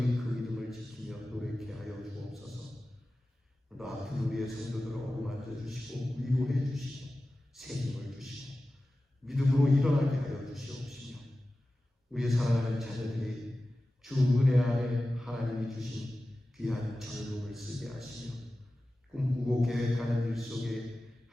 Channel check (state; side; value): normal; both; correlation 0.95